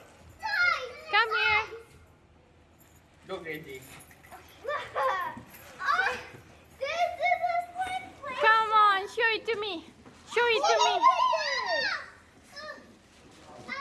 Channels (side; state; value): both; identical; correlation 1.00